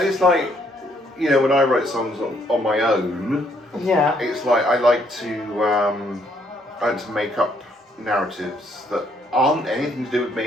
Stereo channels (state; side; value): normal; both; correlation 0.69